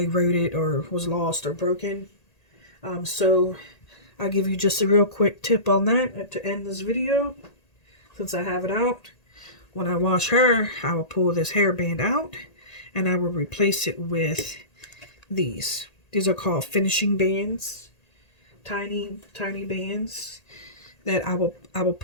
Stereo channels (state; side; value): late; right; 1.8 ms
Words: wrote it or was lost or broken. So I'll give you just a real quick tip on that to end this video. Since I have it out, when I wash her, I will pull this hairband out and I will replace it with these. These are called finishing bands, tiny bands. That I will